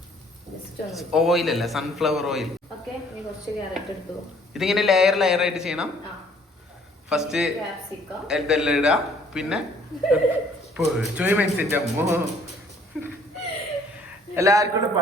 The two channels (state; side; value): normal; both; correlation 0.59